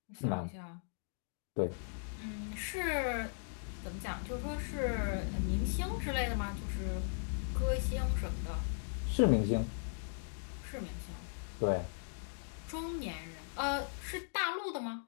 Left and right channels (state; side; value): silent; right; digital silence